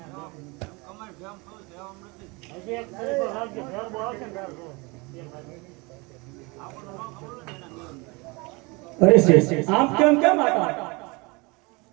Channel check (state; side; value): quieter; left; 26.9 dB